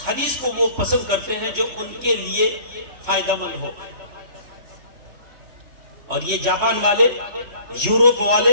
حدیث کو وہ پسند کرتے ہیں جو ان کے لیے فائدہ مند ہو. اور یہ جاپان والے، یورپ والے،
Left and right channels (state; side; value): late; left; 3.1 ms